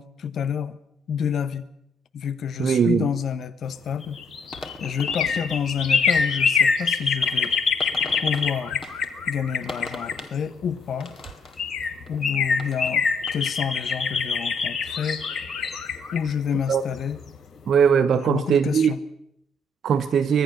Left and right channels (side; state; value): both; normal; correlation 0.68